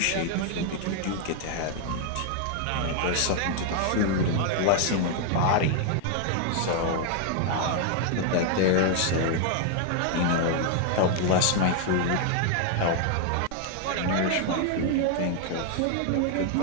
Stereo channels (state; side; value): different; both; correlation 0.00